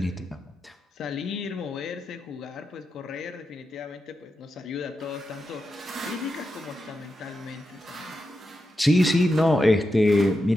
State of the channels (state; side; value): normal; both; correlation 0.88